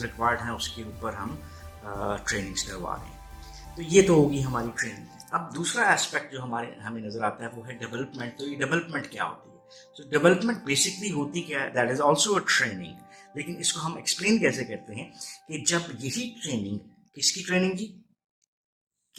रिक्वायर्ड हैं उसके ऊपर हम ट्रेनिंग्स करवा रहे हैं। तो ये तो होगी हमारी ट्रेनिंग। अब दूसरा एस्पेक्ट जो हमें नज़र आता है वो है डेवलपमेंट। तो ये डेवलपमेंट क्या होती है? तो डेवलपमेंट बेसिकली होती क्या है? That is also a training. लेकिन इसको हम एक्सप्लेन कैसे करते हैं कि जब यही ट्रेनिंग, किसकी ट्रेनिंग जी?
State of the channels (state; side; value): identical; both; correlation 1.00